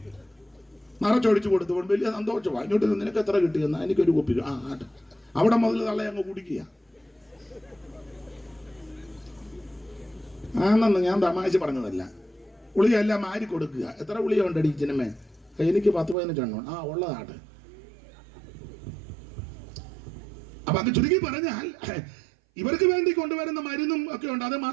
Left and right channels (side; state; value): left; drops out; at 16.2 s